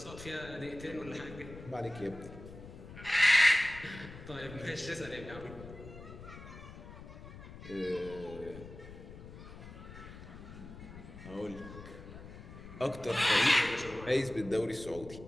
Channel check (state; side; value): noise; left; rumble, 14 dB below the sound